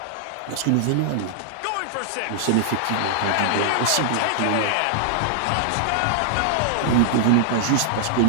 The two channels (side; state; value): both; different; correlation -0.01